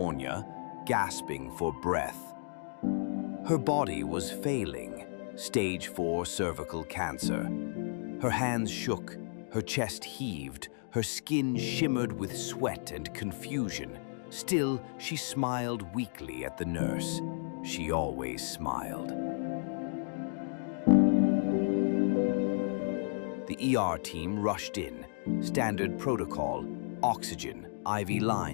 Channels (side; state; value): right; silent; digital silence